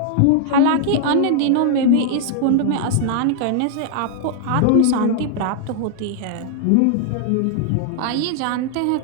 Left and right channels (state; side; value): different; both; correlation 0.00